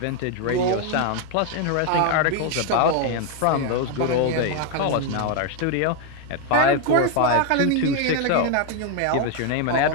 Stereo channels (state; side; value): different; both; correlation 0.01